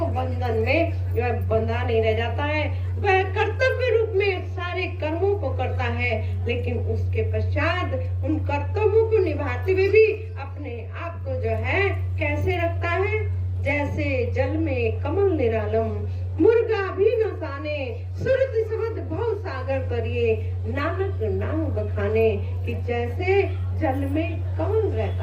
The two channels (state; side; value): identical; both; correlation 1.00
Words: बंधन में वह बंधा नहीं रह जाता है। वह कर्तव्य रूप में सारे कर्मों को करता है, लेकिन उसके पश्चात उन कर्तव्यों को निभाते हुए भी अपने आप को जो है कैसे रखता है, जैसे जल में कमल निरालम, मुर्गा भी न साने, सुरति समद भव सागर तरिए, नानक नाम बखाने। कि जैसे जल में कमल